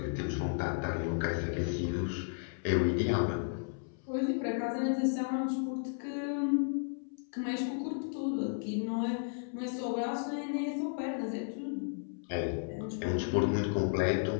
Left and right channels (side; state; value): right; silent; 55 dB below the other